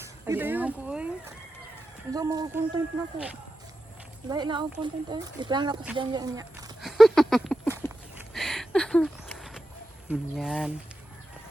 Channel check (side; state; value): both; normal; correlation 0.90